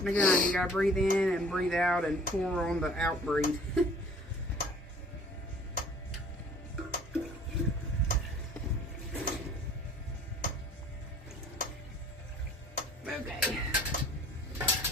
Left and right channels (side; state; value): both; normal; correlation 0.51